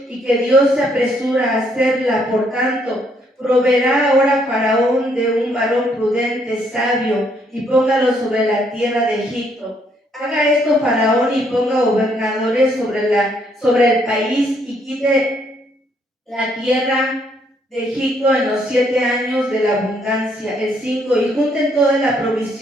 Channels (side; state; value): both; normal; correlation 0.70